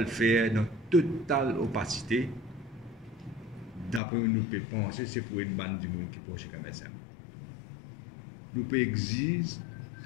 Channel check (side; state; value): right; drops out; at 4.0 s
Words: faire dans totale opacité. D'après nous pouvons penser, c'est pour une bande de monde qui proche comme ça. Nous pouvons exiger